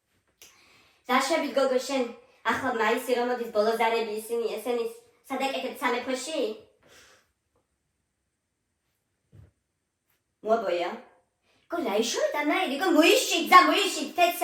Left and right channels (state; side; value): identical; both; correlation 1.00